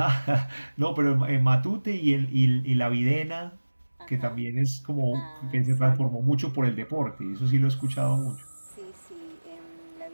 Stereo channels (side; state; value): both; inverted; correlation -1.00